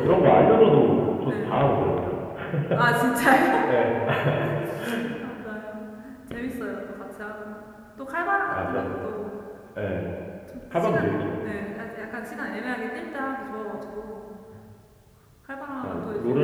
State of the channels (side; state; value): both; identical; correlation 1.00